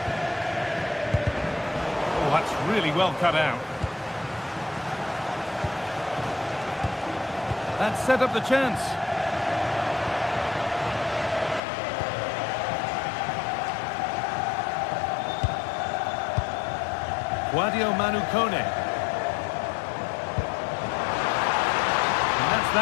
Oh, that's really well cut out. That set up the chance. Sadio Manu Kone. And that's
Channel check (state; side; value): drops out; right; at 11.6 s